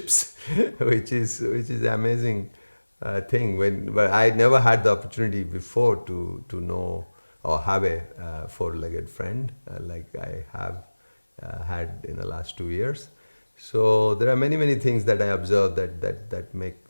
which is amazing thing. But I never had the opportunity before to know or have a four-legged friend like I have had in the last 2 years. So there are many things that I observe that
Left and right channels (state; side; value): inverted; both; correlation -1.00